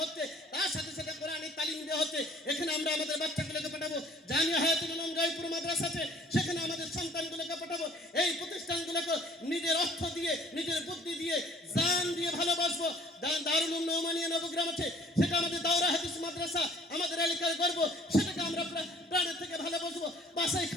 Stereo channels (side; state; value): both; normal; correlation 0.55